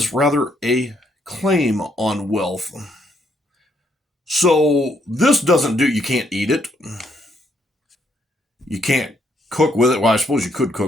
rather a claim on wealth. So this doesn't do, you can't eat it. You can't cook with it. Well, I suppose you could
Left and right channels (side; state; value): both; normal; correlation 0.72